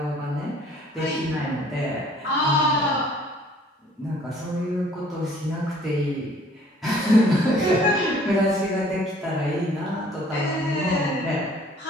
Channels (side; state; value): both; normal; correlation 0.56